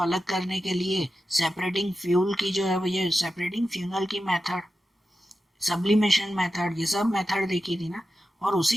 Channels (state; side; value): normal; both; correlation 0.91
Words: करने के लिए सेपरेटिंग फ्यूल की जो है वो ये सेपरेटिंग फ्यूनल की मेथड, सब्लिमेशन मेथड, ये सब मेथड देखी थी ना। और